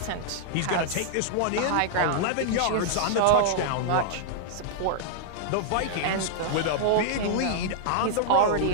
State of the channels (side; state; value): both; different; correlation -0.01